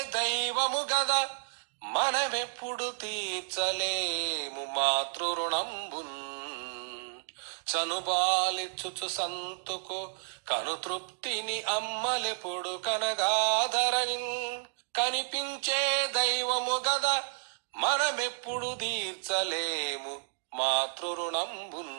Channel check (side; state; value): left; silent; digital silence